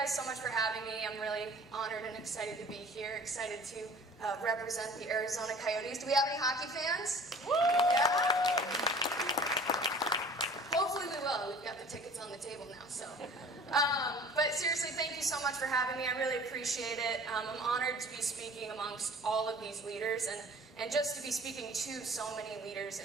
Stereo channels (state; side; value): normal; both; correlation 0.46